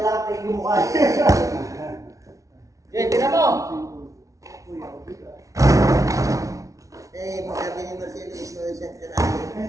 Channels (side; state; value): left; late; 0.16 ms